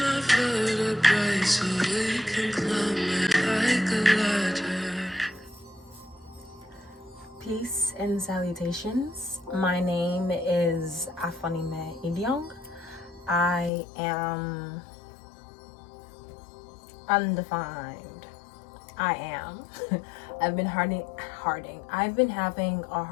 vertebrae so we can climb it like a ladder. Peace and salutations. My name is Afanime Ilyong. I am undefined. I am. I've been I've been having a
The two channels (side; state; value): right; drops out; at 13.7 s